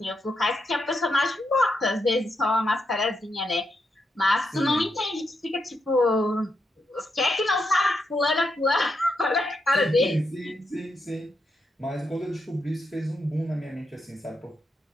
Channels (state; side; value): normal; both; correlation 0.83